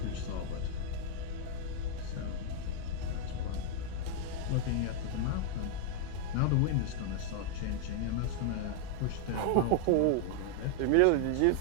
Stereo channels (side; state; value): both; different; correlation -0.01